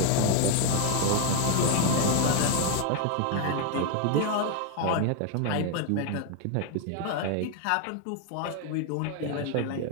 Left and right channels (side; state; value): both; different; correlation 0.01